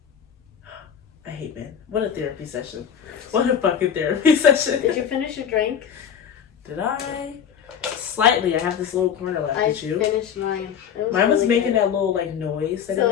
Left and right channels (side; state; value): right; quieter; 8.1 dB